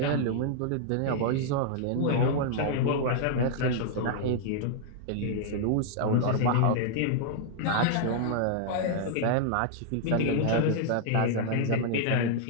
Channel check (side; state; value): both; different; correlation -0.01